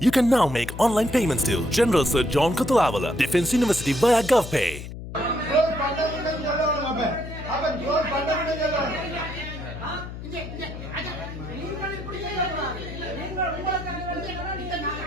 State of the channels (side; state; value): left; noise; hum, 10 dB below the sound